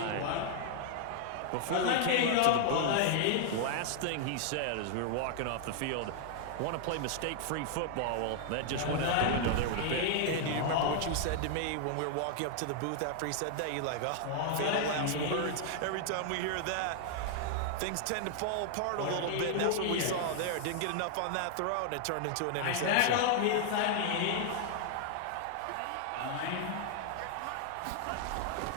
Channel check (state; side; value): different; both; correlation 0.00